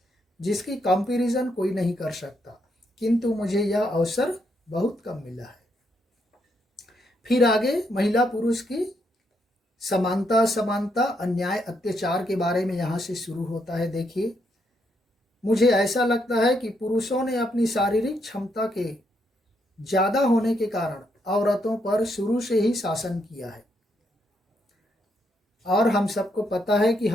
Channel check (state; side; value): normal; both; correlation 0.77